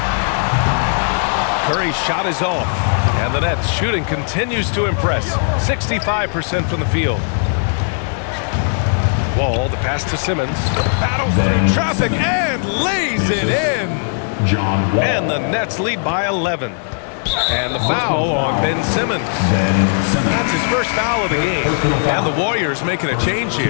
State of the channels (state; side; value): silent; right; digital silence